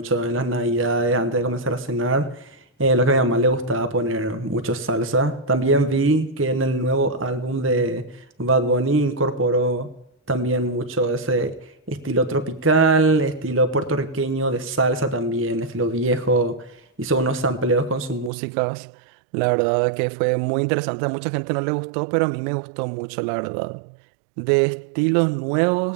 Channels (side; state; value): left; drops out; at 18.3 s